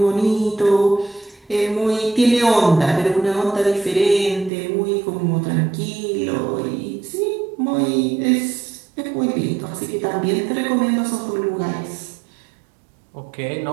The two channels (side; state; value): left; drops out; at 4.5 s